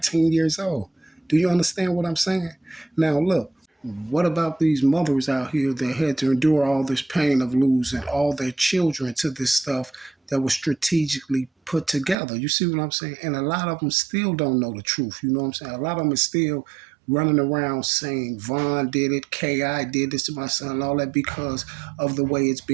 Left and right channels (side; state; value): left; drops out; at 12.2 s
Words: years old. Do you understand what I'm saying? Now, look, what about these mothers out here that had to endure all this pain of losing all their children to this stuff that was strategically put together? You see what I'm saying? And a lot of them still don't know the truth. You know what I'm saying? A lot of them is still running around saying Vaughn did it, Ki did this to my son, and all that because of the way it's